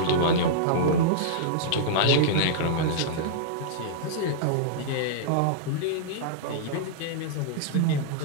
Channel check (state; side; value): different; both; correlation -0.02